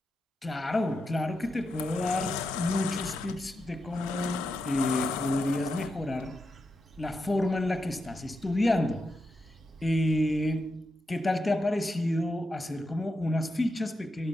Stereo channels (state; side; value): normal; both; correlation 0.87